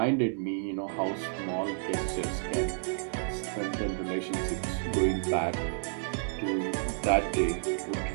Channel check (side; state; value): left; silent; digital silence